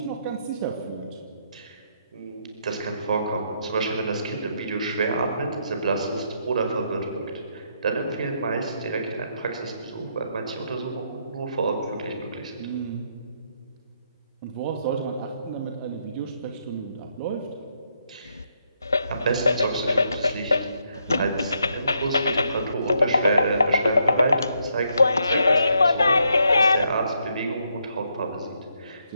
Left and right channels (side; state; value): both; inverted; correlation -0.76